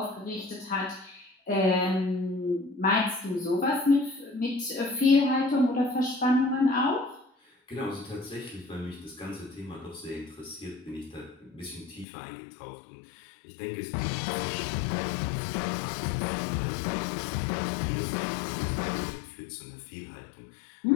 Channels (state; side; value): drops out; right; at 12.1 s